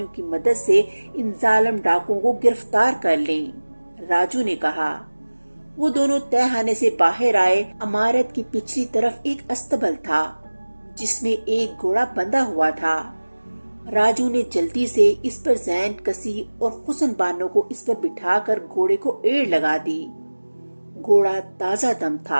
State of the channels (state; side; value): inverted; both; correlation -1.00